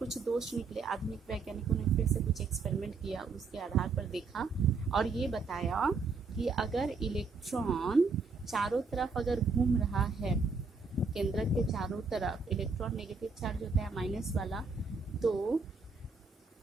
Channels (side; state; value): left; quieter; 4.4 dB